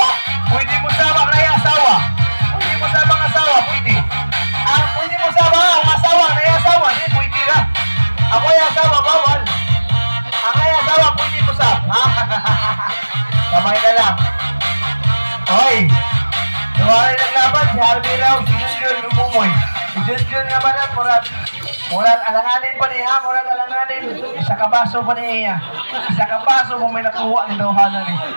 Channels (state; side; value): inverted; both; correlation -1.00